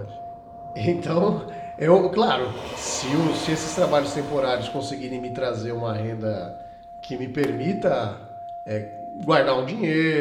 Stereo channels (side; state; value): both; identical; correlation 1.00